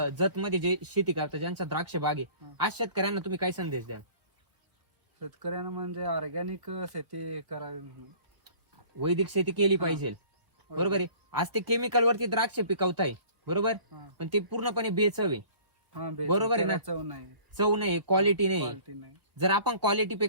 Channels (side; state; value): left; late; 1.3 ms